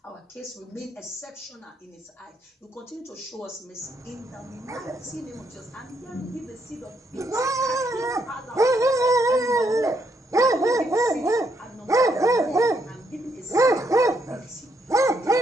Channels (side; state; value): both; normal; correlation 0.75